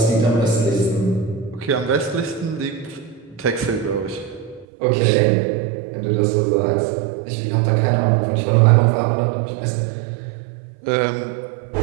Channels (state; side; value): drops out; left; at 4.7 s